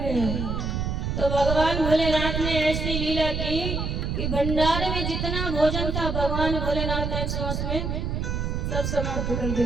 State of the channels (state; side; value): noise; right; rumble, 1 dB below the sound